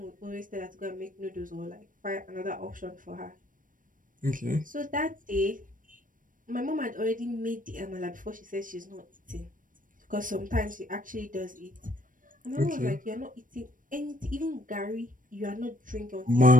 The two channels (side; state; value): left; late; 0.39 ms